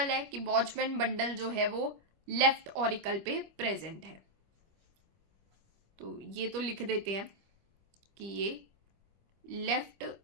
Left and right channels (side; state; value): left; late; 25 ms